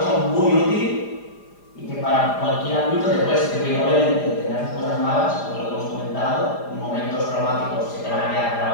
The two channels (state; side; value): late; right; 4.9 ms